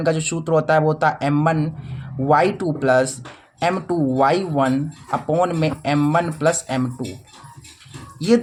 का जो सूत्र होता है वो होता है m1 y2 plus m2 y1 upon में m1 प्लस m2। ये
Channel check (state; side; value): identical; both; correlation 1.00